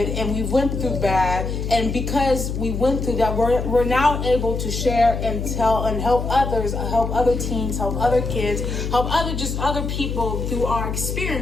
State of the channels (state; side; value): noise; left; hum, 3 dB below the sound